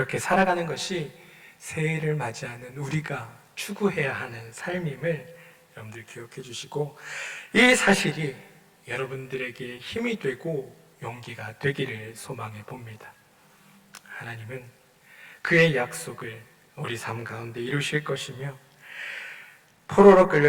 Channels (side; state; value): both; identical; correlation 1.00